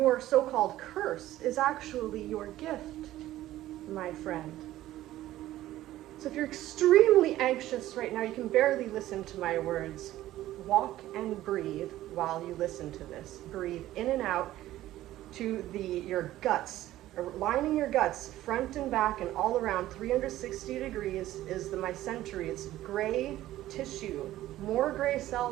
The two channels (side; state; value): left; quieter; 14.7 dB